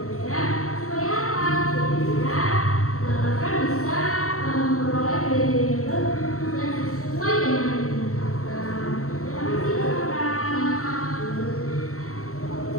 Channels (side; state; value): right; late; 0.64 ms